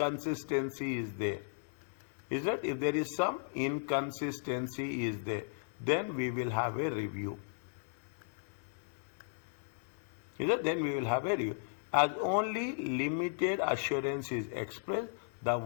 is there, is that if there is some inconsistency is there, then we will have a review. Is that? Then we will have a review. As only limited assurance is expressed, the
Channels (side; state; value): right; silent; digital silence